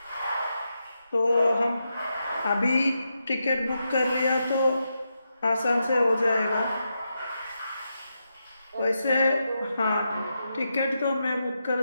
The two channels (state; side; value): inverted; both; correlation -0.86